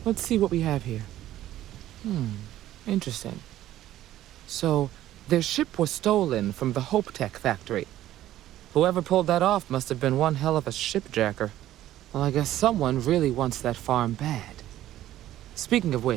Let's see what we have here. Interesting. So, their ship was stolen from the Hope Tech factory. Whoever pulled that off must have been one hell of a shipjacker. Well, I guess someone really wants that farm bad. Speaking of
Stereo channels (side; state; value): left; quieter; 13.5 dB